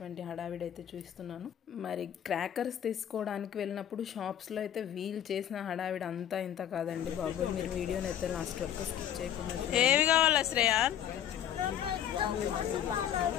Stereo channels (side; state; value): right; quieter; 10.3 dB